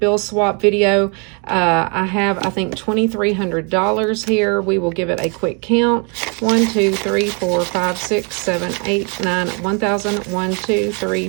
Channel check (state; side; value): quieter; left; 35.5 dB